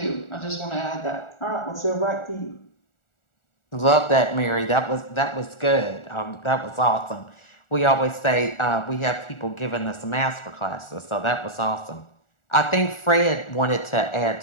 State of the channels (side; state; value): right; late; 1.4 ms